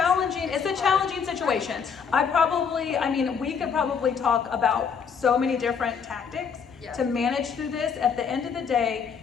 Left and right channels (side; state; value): right; quieter; 6.5 dB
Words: situation. We could probably talk about so many different tactics to manage through this. At the end of the day,